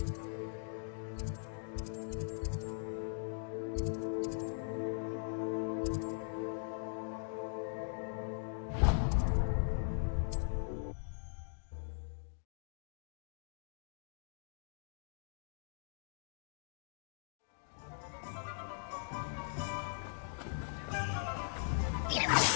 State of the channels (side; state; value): right; silent; digital silence